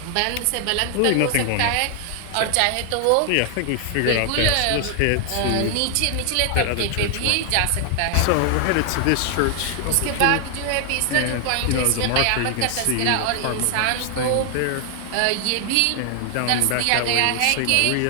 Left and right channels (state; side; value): different; both; correlation 0.00